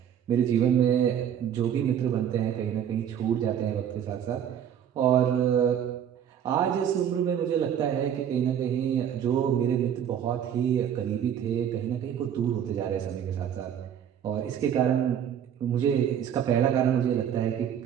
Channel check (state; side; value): quieter; left; 9.2 dB